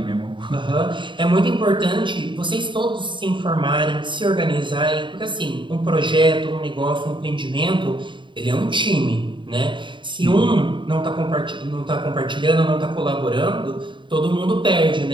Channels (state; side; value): late; left; 0.23 ms